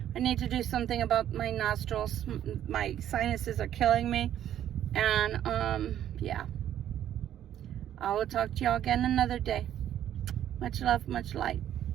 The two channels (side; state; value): left; quieter; 11.0 dB